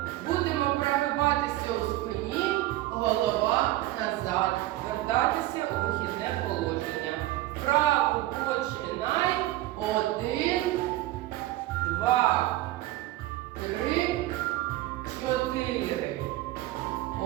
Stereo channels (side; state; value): left; quieter; 16.3 dB